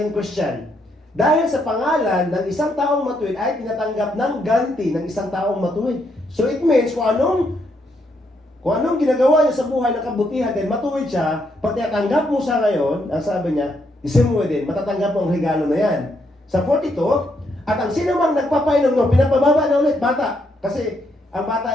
Christian. Dahil sa pangalan ng isang taong matuwid ay tinatanggap ng ganti ng isang taong matuwid. So it means kung anong ginagawa niya sa buhay ng kabutihan, then matuwid siya, pag tinatanggap mo siya ngayon, ang sabi niya, isang mo din, matatanggap mo ang regalo na yan. Sa 42, at ang sino mang nagpapainom no, pinapababa na ulit, bata. Kasi ang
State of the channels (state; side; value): normal; both; correlation 0.76